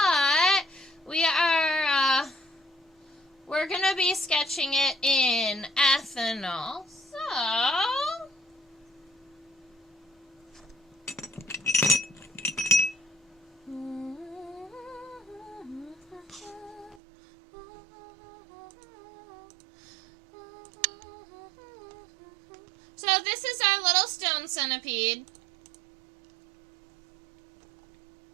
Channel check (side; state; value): left; drops out; at 17.0 s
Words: we're gonna be sketching it in ethanol. So this is our little stone centipede.